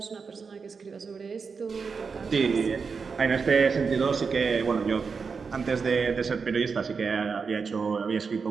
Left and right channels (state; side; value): quieter; left; 5.3 dB